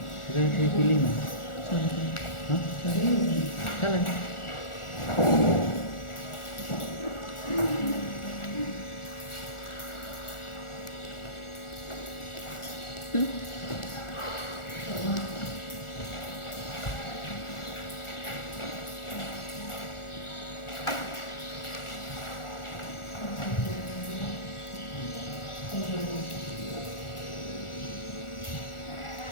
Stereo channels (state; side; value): late; right; 1.4 ms